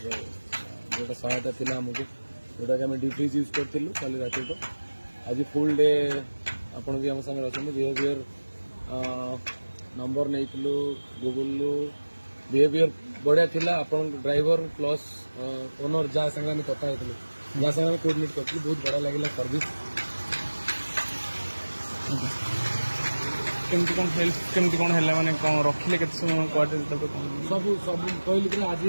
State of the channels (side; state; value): both; inverted; correlation -1.00